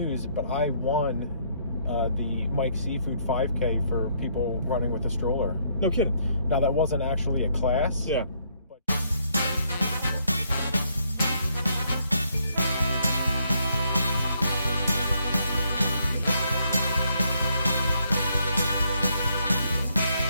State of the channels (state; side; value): inverted; both; correlation -0.71